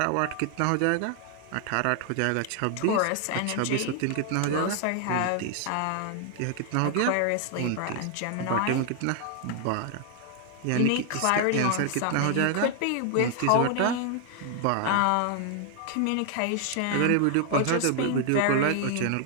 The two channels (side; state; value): both; different; correlation 0.00